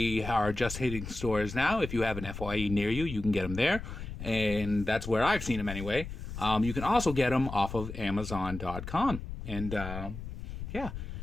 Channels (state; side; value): noise; left; rumble, 8 dB below the sound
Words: are just hitting stores now. If you have an FYE near you, you can get them there, and that's where I've seen them anyway. You can also get them off of Amazon.com, and yeah,